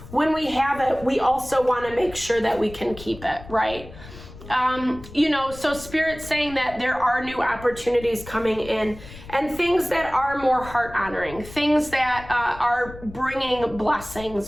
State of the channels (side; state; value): left; noise; rumble, 16 dB below the sound